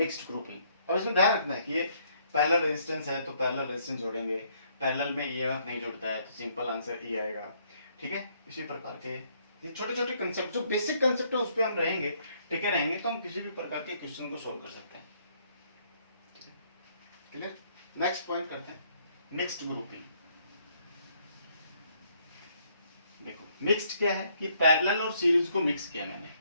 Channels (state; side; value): inverted; both; correlation -0.68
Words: grouping. अब इसमें ध्यान रखना है कि ये पैरेलल रेजिस्टेंस है तो पैरेलल रेजिस्टेंस जोड़ेंगे, पैरेलल में ईएमएफ नहीं जुड़ता है तो सिंपल आंसर ई आएगा। ठीक है, इसी प्रकार के ये छोटे छोटे कंसेप्ट, जो बेसिक कंसेप्ट है उस पर हम रहेंगे, टिके रहेंगे, तो हम किसी भी प्रकार के क्वेश्चन को सोल्व कर सकते हैं। क्लियर? नेक्स्ट पॉइंट करते हैं, मिक्स्ड ग्रुपिंग। देखो मिक्स्ड क्या है कि पैरेलल और सीरीज को मिक्स किया मैंने।